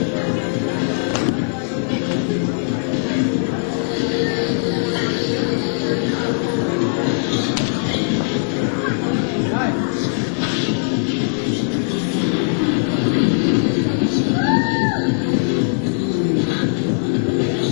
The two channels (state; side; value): silent; right; 62 dB below the other